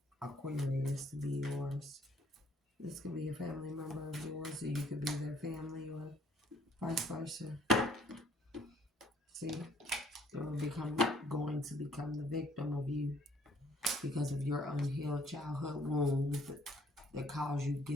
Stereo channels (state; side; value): normal; both; correlation 0.62